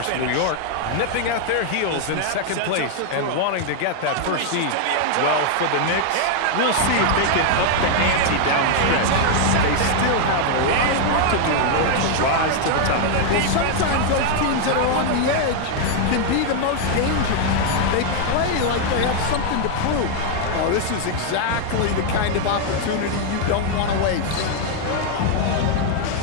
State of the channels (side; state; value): both; different; correlation 0.00